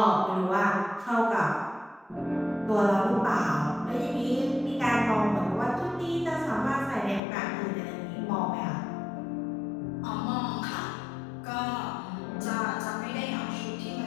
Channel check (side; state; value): right; drops out; at 7.2 s